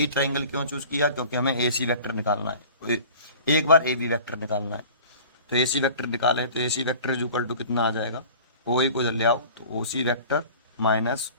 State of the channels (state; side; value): inverted; both; correlation -0.43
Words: ट्राइंगल क्यों चूज किया, क्योंकि हमें ए सी वेक्टर निकालना है, एक बार ए बी वेक्टर निकालना है। तो ए सी वेक्टर निकाले तो ए C vector is equal to कितना आ जाएगा, ओ ए को इधर ले आओ तो ओ C vector minus